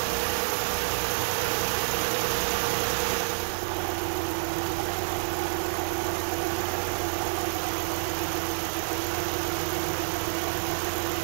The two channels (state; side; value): silent; left; digital silence